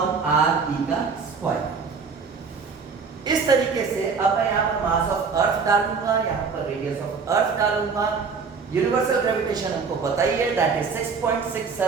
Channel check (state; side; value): quieter; left; 5.3 dB